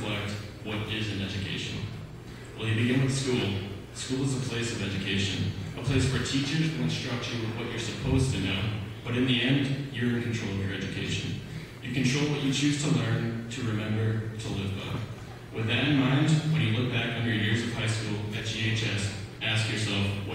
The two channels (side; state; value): both; identical; correlation 1.00